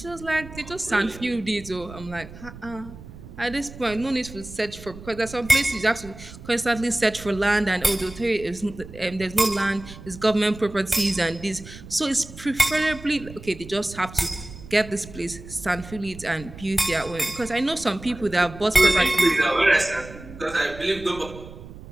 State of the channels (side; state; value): right; noise; rumble, 16 dB below the sound